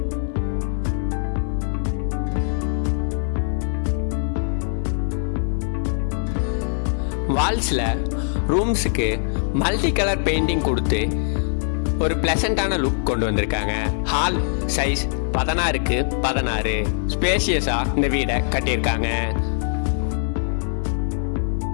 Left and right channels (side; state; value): right; silent; 56 dB below the other